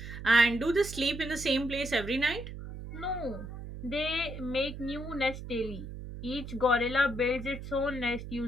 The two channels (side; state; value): right; noise; hum, 10 dB below the sound